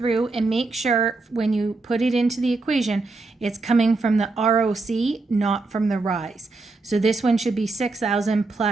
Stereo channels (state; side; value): quieter; left; 3.6 dB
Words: and make sure when you put it into the equation, it's coming from the ROC, not from the rise. So this one should be 6,000